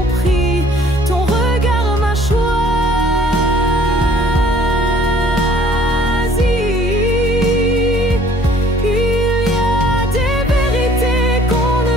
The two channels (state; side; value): normal; both; correlation 0.55